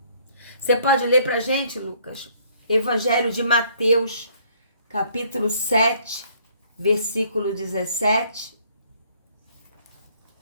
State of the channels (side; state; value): both; inverted; correlation -0.63